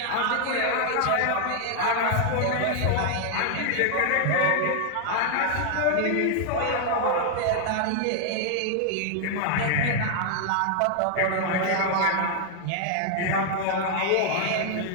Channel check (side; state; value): both; different; correlation 0.00